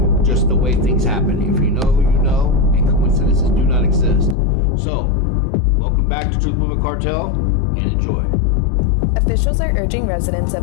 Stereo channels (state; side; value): drops out; right; at 4.4 s